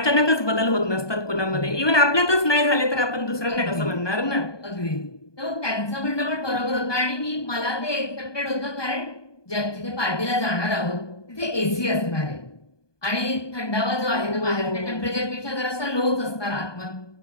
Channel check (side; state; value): right; late; 1.2 ms